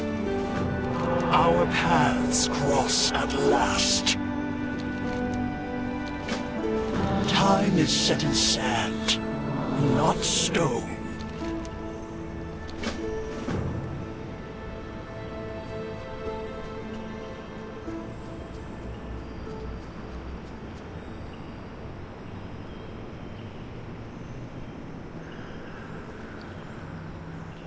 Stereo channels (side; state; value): both; identical; correlation 1.00